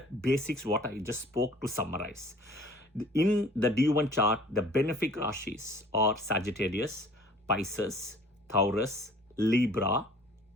basics what I just spoke to summarize. In the D1 chart, the benefic rashis are Sagittarius, Pisces, Taurus, Libra.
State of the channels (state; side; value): normal; both; correlation 0.51